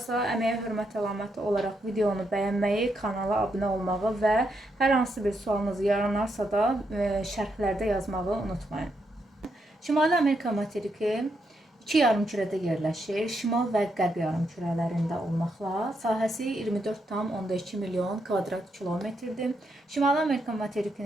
əməyə hörmət əlaməti olaraq videonu bəyənməyi, kanala abunə olmağı və hər hansı bir sualınız yaranarsa da şərhlərdə yazmağı unutmayın. Şimali Amerika materiki İki yarımkürədə yerləşir, şimal və qərb yarımkürələrində olmaqla. Sahəsi 24,2 milyon kvadrat kilometrdir. Şimali Amerika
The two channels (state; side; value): normal; both; correlation 0.80